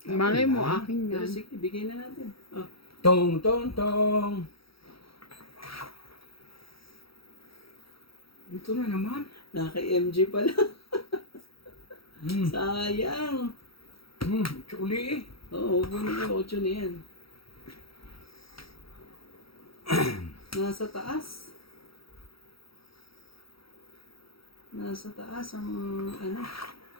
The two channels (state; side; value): late; right; 0.75 ms